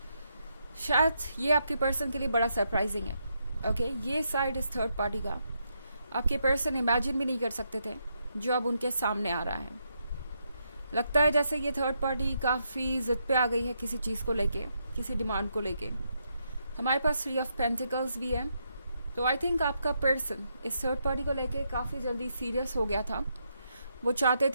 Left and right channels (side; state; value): both; inverted; correlation -0.80